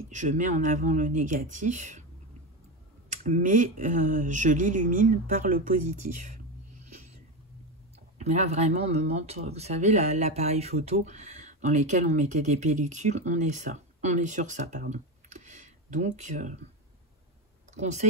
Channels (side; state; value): both; normal; correlation 0.16